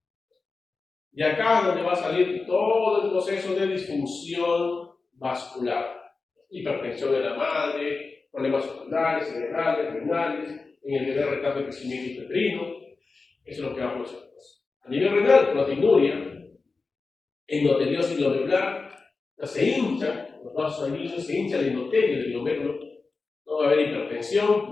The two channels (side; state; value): right; quieter; 4.1 dB